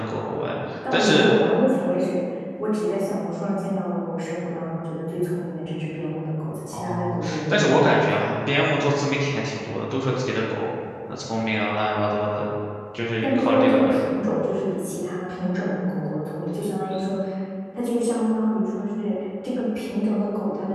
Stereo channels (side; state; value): both; identical; correlation 1.00